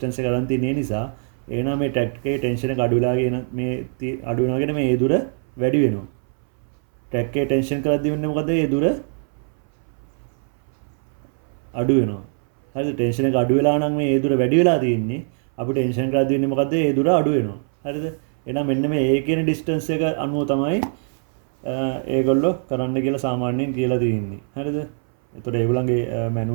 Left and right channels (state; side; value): silent; left; 61 dB below the other